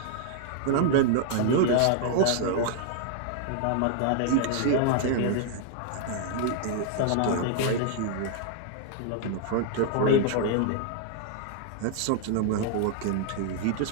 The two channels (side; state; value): both; different; correlation 0.00